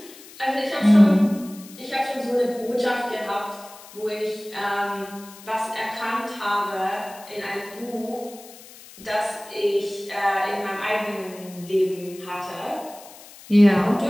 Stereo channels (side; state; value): left; noise; hiss, 19 dB below the sound